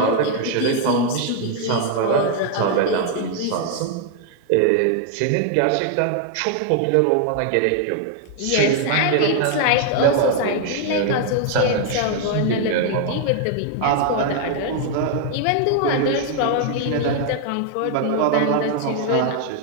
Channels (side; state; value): both; different; correlation 0.00